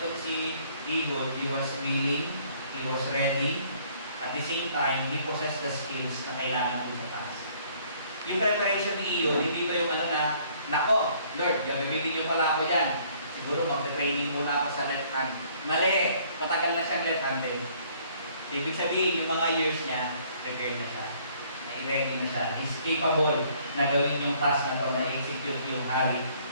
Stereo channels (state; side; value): inverted; both; correlation -0.61